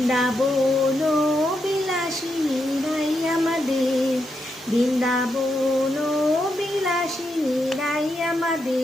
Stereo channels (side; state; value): both; normal; correlation 0.83